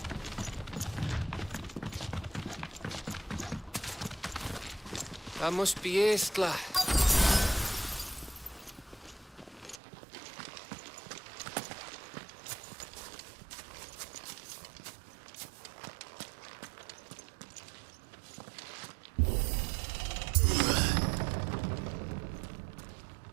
That must be Estla.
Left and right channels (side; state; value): left; drops out; at 9.8 s